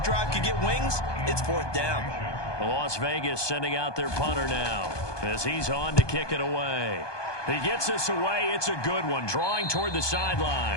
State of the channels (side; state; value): right; late; 1.2 ms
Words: could get wings, it's 4th down. Las Vegas sending out their punter now as he's on to kick it away. He gets this away. It's a good one, drawing toward the